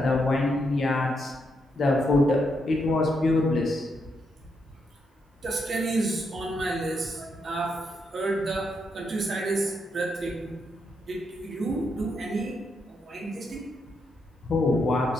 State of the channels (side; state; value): both; normal; correlation 0.80